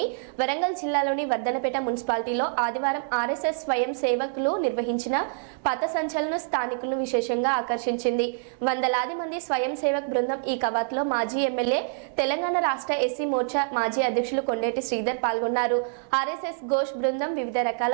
వరంగల్ జిల్లాలోని వర్ధనపేట మున్సిపాలిటీలో ఆదివారం ఆర్ఎస్ఎస్ స్వయం సేవకులు నిర్వహించిన పథ సంచలనం స్థానికులను విశేషంగా ఆకర్షించింది. వందలాది మంది స్వయం సేవక్ బృందం ఈ కవాతులో మాజీ ఎమ్మెల్యే, తెలంగాణ రాష్ట్ర ఎస్సీ మోర్చా మాజీ అధ్యక్షులు కొండేటి శ్రీధర్ పాల్గొన్నారు. ఆర్ఎస్ఎస్ ఘోష్ బృందం వివిధ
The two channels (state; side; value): silent; left; digital silence